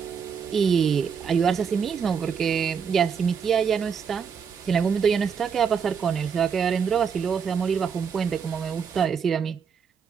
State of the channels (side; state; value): left; quieter; 6.7 dB